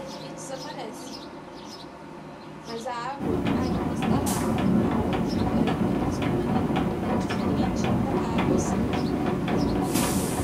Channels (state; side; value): identical; both; correlation 1.00